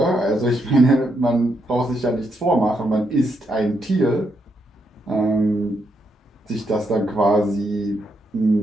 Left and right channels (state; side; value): normal; both; correlation 0.79